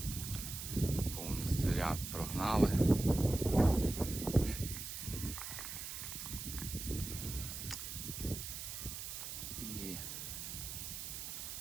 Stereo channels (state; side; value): noise; right; hiss, 7 dB below the sound